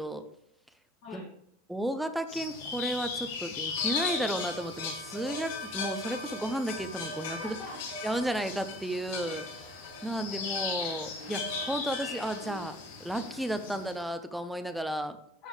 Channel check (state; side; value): normal; both; correlation 0.54